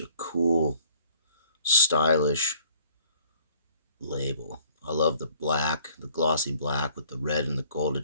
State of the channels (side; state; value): both; inverted; correlation -0.55